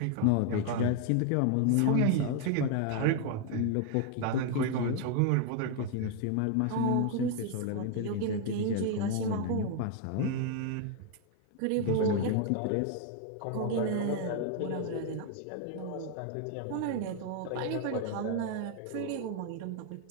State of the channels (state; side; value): different; both; correlation 0.00